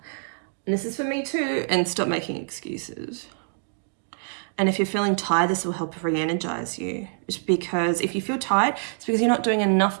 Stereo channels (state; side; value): silent; left; digital silence